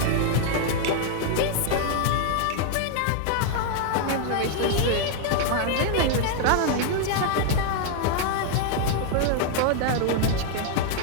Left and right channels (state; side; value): different; both; correlation 0.00